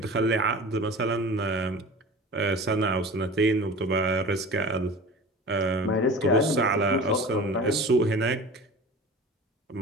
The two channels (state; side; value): normal; both; correlation 0.37